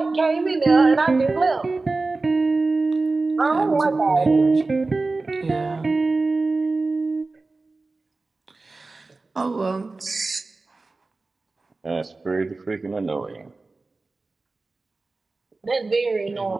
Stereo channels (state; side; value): quieter; left; 3.5 dB